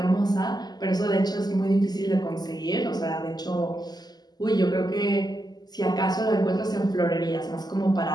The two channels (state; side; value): late; right; 0.20 ms